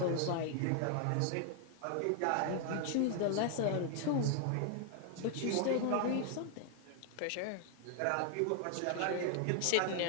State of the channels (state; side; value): different; both; correlation 0.00